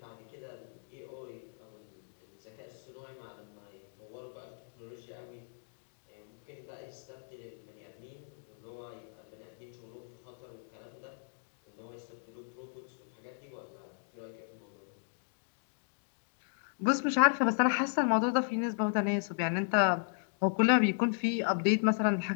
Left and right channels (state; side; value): silent; right; digital silence